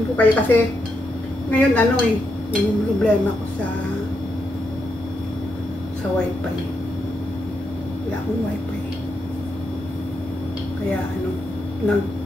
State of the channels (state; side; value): noise; left; rumble, 26 dB below the sound